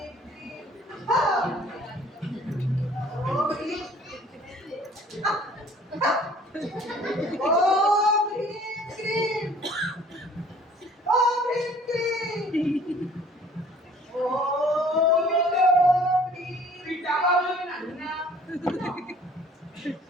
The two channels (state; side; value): normal; both; correlation 0.53